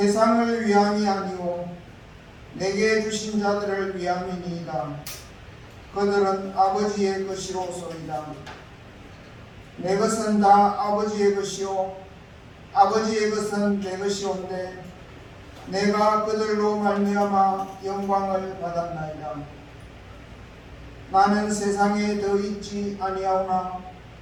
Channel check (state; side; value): identical; both; correlation 1.00